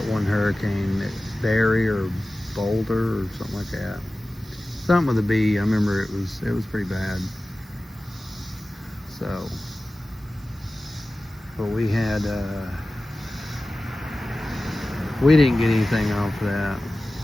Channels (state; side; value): normal; both; correlation 0.96